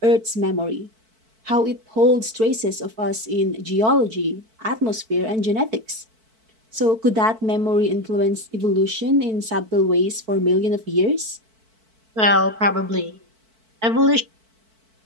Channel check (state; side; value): late; left; 4.5 ms